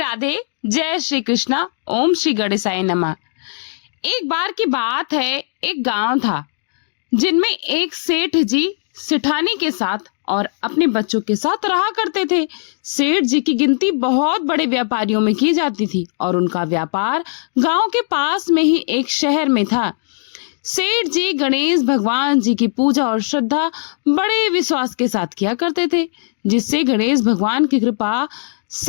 जय श्री कृष्णा। ओम श्री गणेशाय नमः। एक बार की बात है, एक गांव था जिनमें एक सेठ जी सेठानी के साथ और अपने बच्चों के साथ रहा करते थे। सेठ जी की गिनती बहुत बड़े व्यापारियों में की जाती थी और उनका व्यापार गांव के पास में ही एक शहर में था। सेठ जी गणेश भगवान जी की पूजा और श्रद्धा बड़े विश्वास के साथ किया करते थे, जिससे गणेश भगवान की कृपा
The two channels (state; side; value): silent; right; digital silence